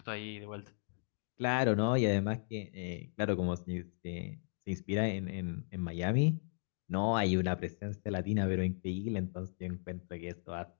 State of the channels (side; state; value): right; silent; digital silence